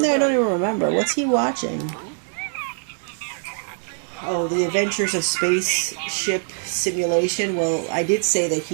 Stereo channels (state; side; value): silent; left; 62 dB below the other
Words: there? I don't even remember. What's he watching? Oh, The Adventures of Spaceship Simulation. Well, I did say that